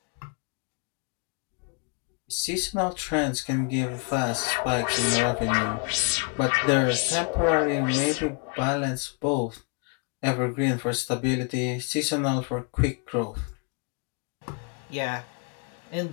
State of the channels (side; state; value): right; quieter; 36.3 dB